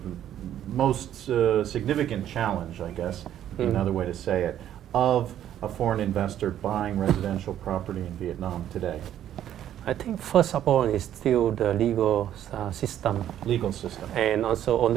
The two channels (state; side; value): quieter; left; 11.1 dB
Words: most significant challenge, I guess, another way to say it, of a foreign investor buying residential property in Vietnam today? I think first of all is still the legal system. Legal system. And also on